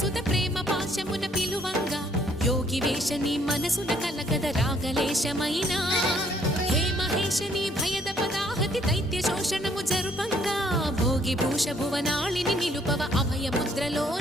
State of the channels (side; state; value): both; normal; correlation 0.65